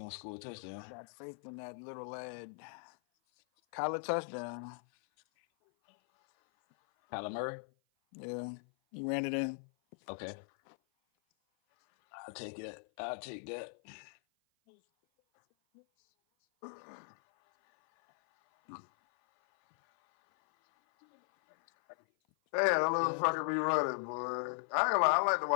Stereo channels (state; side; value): silent; right; 53 dB below the other